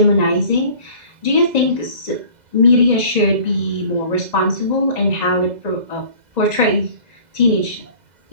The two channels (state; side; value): late; left; 2.0 ms